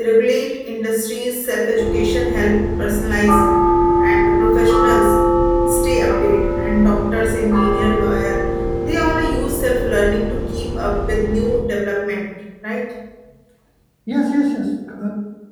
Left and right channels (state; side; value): identical; both; correlation 1.00